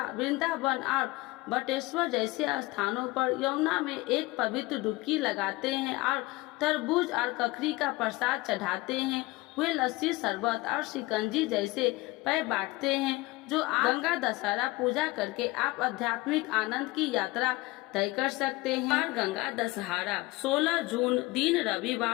वृंदावन और बटेश्वर जैसे स्थानों पर यमुना में एक पवित्र डुबकी लगाते हैं और तरबूज और ककड़ी का प्रसाद चढ़ाते हैं। वे लस्सी शरबत और शिकंजी जैसे पेय बांटते हैं। जो गंगा दशहरा पूजा करके आप आध्यात्मिक आनंद की यात्रा तय कर सकते हैं। बार गंगा दशहरा 16 जून दिन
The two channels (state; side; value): quieter; right; 21.1 dB